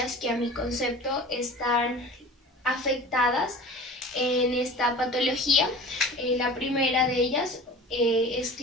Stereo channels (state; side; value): normal; both; correlation 0.39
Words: que a mi concepto están afectadas en esta patología. La primera de ellas es